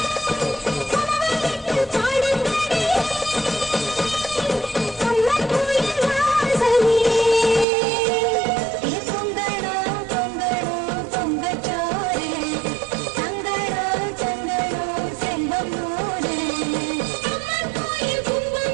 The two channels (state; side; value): drops out; left; at 7.7 s